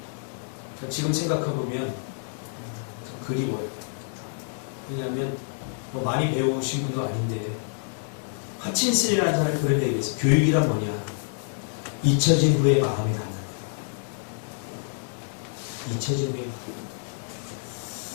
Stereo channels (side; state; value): right; silent; digital silence